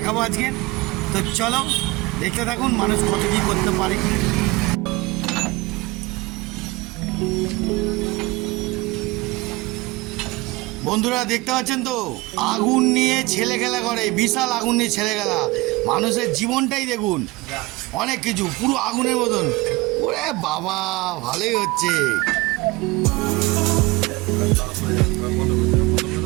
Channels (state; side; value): quieter; left; 22.3 dB